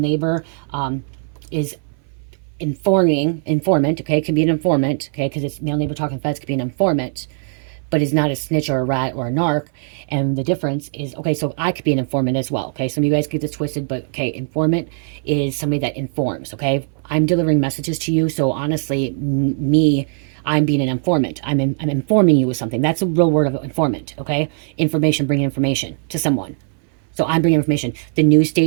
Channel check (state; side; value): silent; left; 61 dB below the other